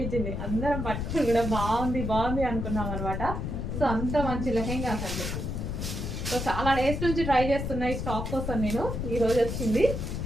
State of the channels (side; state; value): left; noise; rumble, 3 dB below the sound